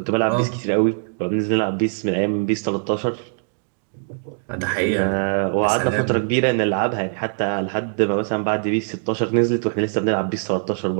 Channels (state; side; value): silent; left; digital silence